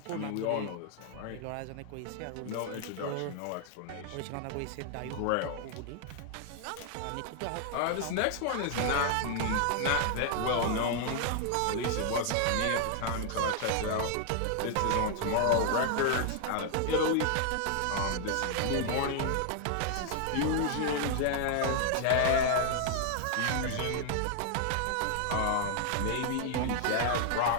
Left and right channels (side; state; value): both; different; correlation 0.00